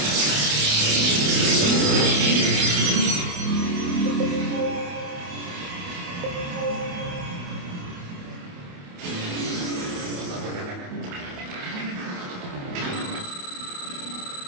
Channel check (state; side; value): late; left; 28 ms